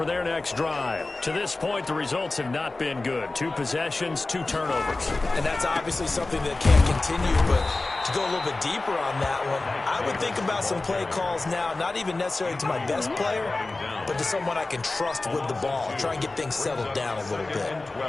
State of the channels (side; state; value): right; quieter; 3.2 dB